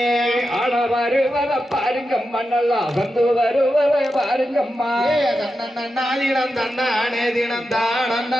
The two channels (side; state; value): both; normal; correlation 0.89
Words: ஆட வருவத பாருங்கம்மா நல்லா வந்து வருவத பாருங்கம்மா தன்னன்னாதினம் தன்னானே தினம்